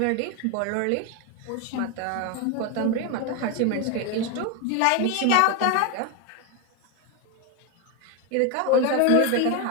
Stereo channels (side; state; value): both; different; correlation 0.02